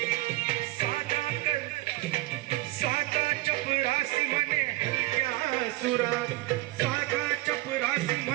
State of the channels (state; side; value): quieter; left; 18.7 dB